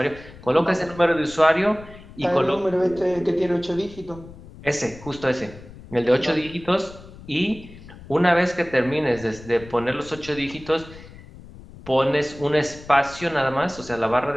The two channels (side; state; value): left; noise; rumble, 18 dB below the sound